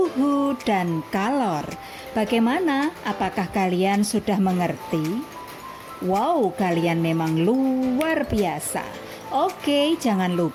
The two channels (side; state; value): both; identical; correlation 1.00